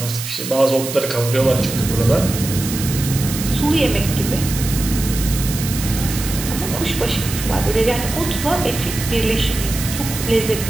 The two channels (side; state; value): right; noise; hiss, 7 dB below the sound